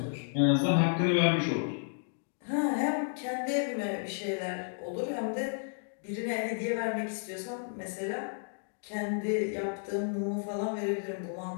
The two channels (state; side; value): silent; right; digital silence